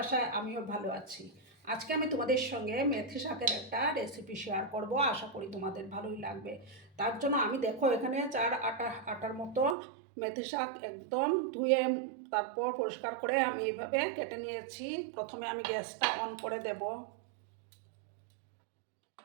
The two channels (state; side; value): drops out; left; at 9.8 s